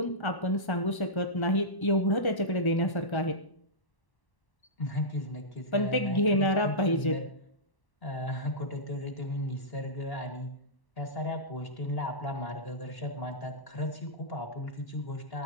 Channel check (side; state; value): right; late; 1.1 ms